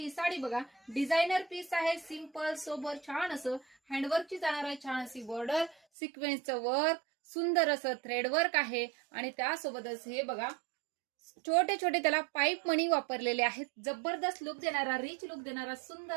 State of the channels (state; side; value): drops out; left; at 5.8 s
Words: साडी बघा, डिझायनर पीस आहे, सिंपल सोबर छान असं हँडवर्कची जाणार आहे, छान अशी बॉर्डर, सिक्वेन्सचं वर्क, सुंदर असं थ्रेड वर्क आहे आणि त्यासोबतच हे बघा छोटे छोटे त्याला पाईप मणी वापरलेले आहेत। जबरदस्त लुक देणारा, रिच लुक देणारा